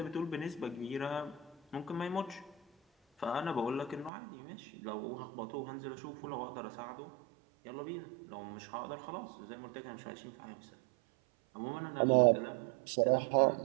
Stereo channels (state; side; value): drops out; left; at 4.1 s